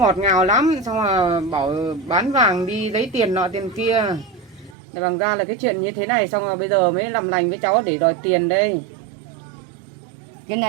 ngào lắm, xong là bảo bán vàng đi lấy tiền nọ tiền kia. Để bằng ra là cái chuyện như thế này, xong rồi bây giờ mới làm lành với cháu để đòi tiền đây. Cái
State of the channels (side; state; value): left; drops out; at 4.8 s